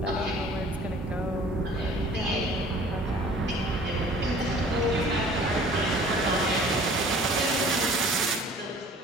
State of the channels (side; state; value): both; normal; correlation 0.49